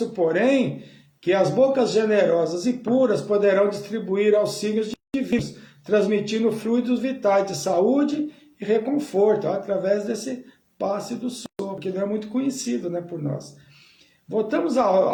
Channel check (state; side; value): identical; both; correlation 1.00